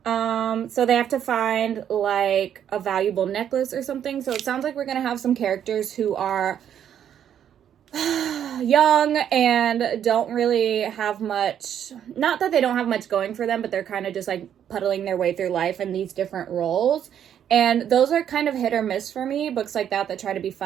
So they have to find like a valuable necklace or something. So it sounds like we're going to have some characters who are young and don't really have much, not that they don't have much going for them, but they're kind of just like puddling their way through life in these different roles. And those are kind of hit or miss for me, books like that try to be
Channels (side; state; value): left; quieter; 9.5 dB